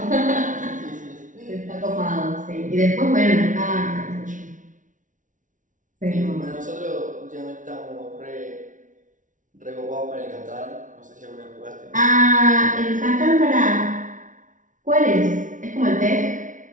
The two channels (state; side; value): late; left; 0.37 ms